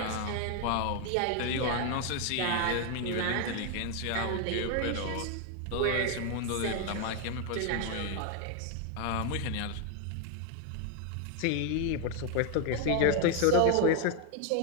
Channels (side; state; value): both; different; correlation 0.01